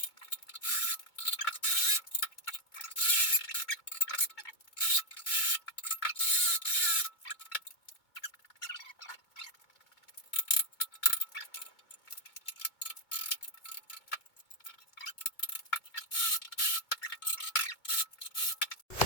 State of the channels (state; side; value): late; right; 2.2 ms